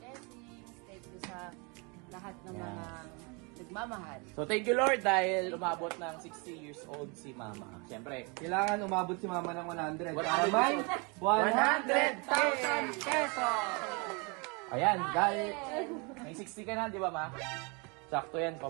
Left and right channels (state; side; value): quieter; left; 31.2 dB